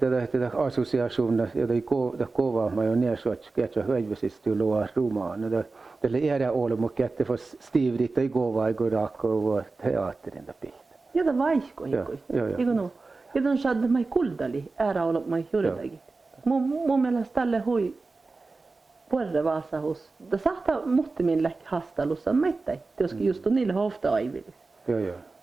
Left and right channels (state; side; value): quieter; left; 3.8 dB